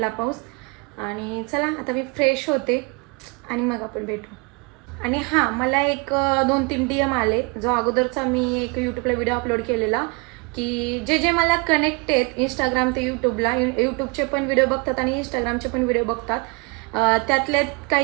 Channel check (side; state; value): left; quieter; 30.0 dB